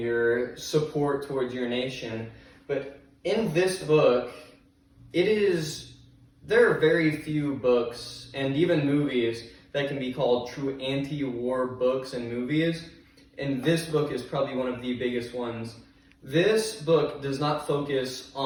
your support towards your nation. But in this book, there are very few books and even movies that can be called true anti-war books and movies, and this book is probably one of the biggest ones. This book does not focus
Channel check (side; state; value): both; identical; correlation 1.00